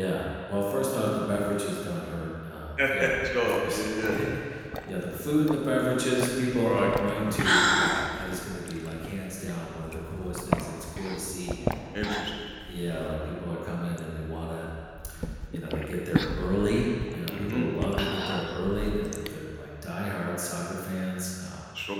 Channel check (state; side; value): identical; both; correlation 1.00